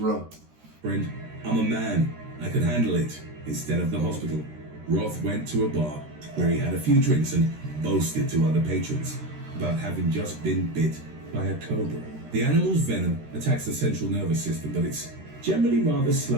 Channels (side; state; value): left; late; 13 ms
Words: Friend, I'm a man. I can handle it. Instead of the hospital, Roth went to a bar where he had a few drinks and boasted to other patrons about having just been bit by a cobra. The animal's venom attacks the central nervous system, but it's generally rather